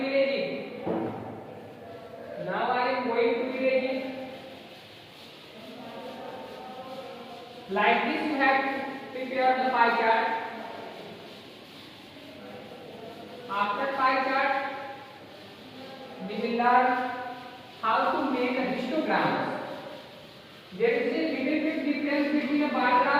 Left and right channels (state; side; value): identical; both; correlation 1.00